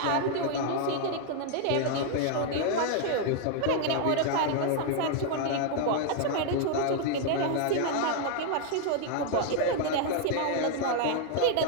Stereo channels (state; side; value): different; both; correlation 0.00